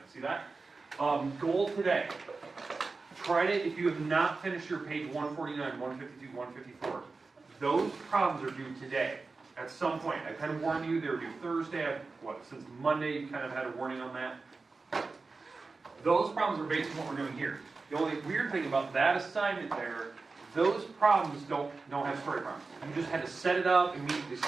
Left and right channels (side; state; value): left; quieter; 4.0 dB